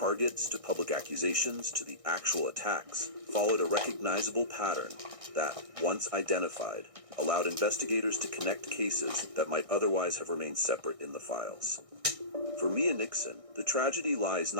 to public accusations to the actual attacks, followed a recognizable pattern that, once identified, allowed investigators to connect cases that might otherwise have remained separate in the files. For Mia Nixon, the tragedy lies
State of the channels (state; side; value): late; left; 1.6 ms